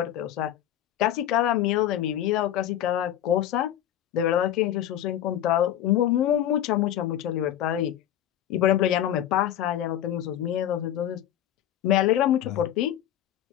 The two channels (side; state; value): right; quieter; 11.6 dB